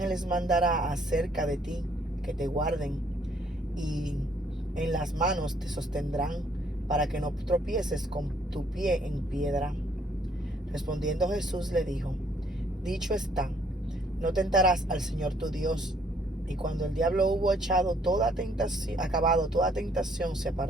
mandará acerca de ti, que te guarden, y en las manos te sostendrán, para que no tropieces con tu pie en piedra. Respondiendo Jesús le dijo: dicho está, no tentarás al Señor tu Dios. Y cuando el diablo hubo acabado toda tentación, se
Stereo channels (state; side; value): normal; both; correlation 0.65